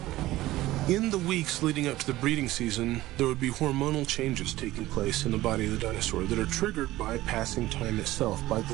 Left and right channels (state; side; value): quieter; left; 16.7 dB